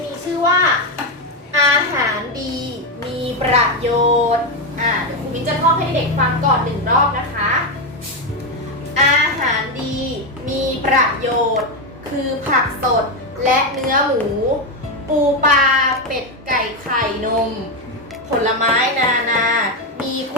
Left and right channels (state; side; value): normal; both; correlation 0.08